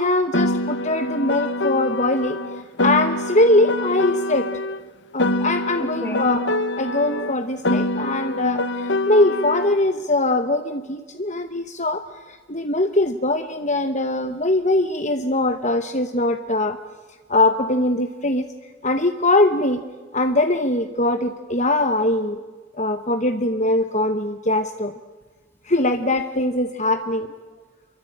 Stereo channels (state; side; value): normal; both; correlation 0.14